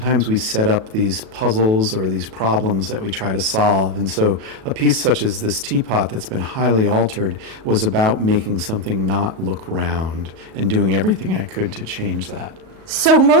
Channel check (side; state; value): left; late; 37 ms